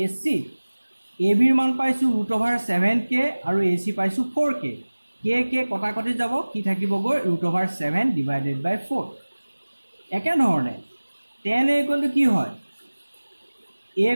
AC ABৰ মান পাইছোঁ √7K আৰু AC পাইছোঁ 4K K কটাকটি যাব কি থাকিবগৈ √7 ডিভাইডেড বাই 4 একেধৰণে tan a ইকুৱেল টু কি হয় a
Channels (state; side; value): inverted; both; correlation -1.00